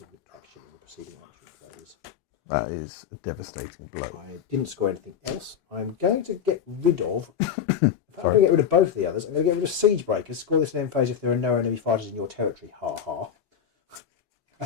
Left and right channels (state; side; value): quieter; right; 8.2 dB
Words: of action in the preceding action phase. That is a devastating blow. I didn't score anything else. I'm going to get rid of... in fact, I'm going to get rid of both of the others. I'm going to get rid of Siegebreakers. Score this in end phase if there are no enemy fighters in your territory. Ha ha. I